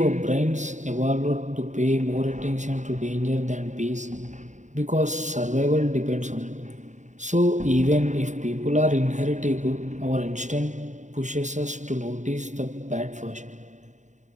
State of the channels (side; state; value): left; late; 0.35 ms